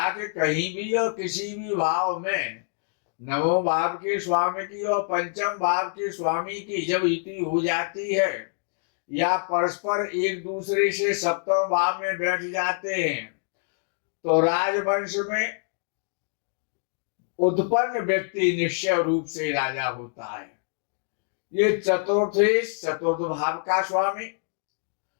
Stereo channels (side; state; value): right; silent; digital silence